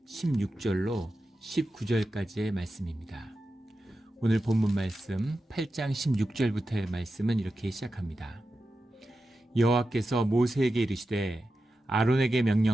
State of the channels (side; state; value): both; normal; correlation 0.91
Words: 16절로 19절까지의 말씀입니다. 오늘 본문 말씀 8장 16절부터의 말씀은 이렇게 시작합니다. 여호와께서 모세에게 이르시되 아론에게